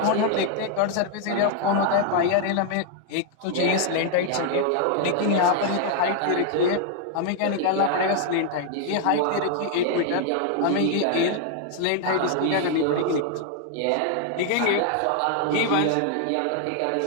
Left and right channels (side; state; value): both; different; correlation 0.00